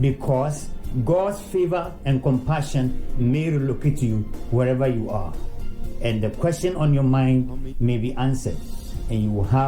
God's favor and compassion may relocate you wherever you are, and the question on your mind may be answered, and you will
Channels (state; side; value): identical; both; correlation 1.00